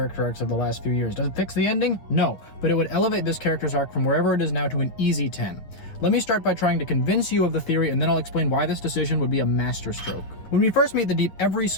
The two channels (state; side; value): late; right; 9.6 ms